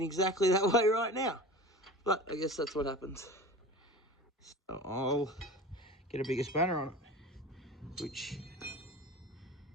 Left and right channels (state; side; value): normal; both; correlation 0.35